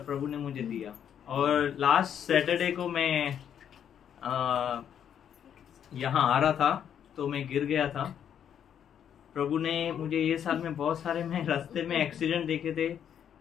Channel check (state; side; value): quieter; right; 9.0 dB